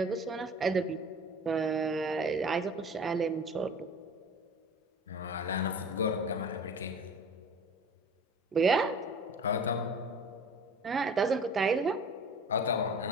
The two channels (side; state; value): both; normal; correlation 0.42